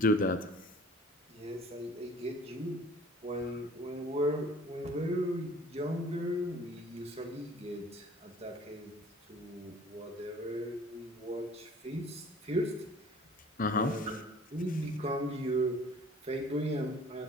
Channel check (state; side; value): normal; both; correlation 0.50